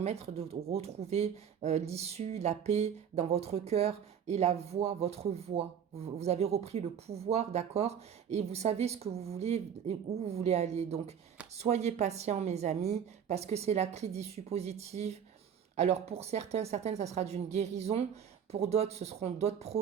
de retrouver l'issue, la paix dans votre cœur et la voix, votre voix. Vous avez repris le pouvoir, d'accord? Et vous savez ce que vous voulez et où vous voulez aller. Donc soyez patients, mes amis, parce que c'est la clé d'issue positive. Alors pour certaines, ça sera d'une guérison. Pour d'autres, ce seront d'autres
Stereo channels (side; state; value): left; quieter; 8.3 dB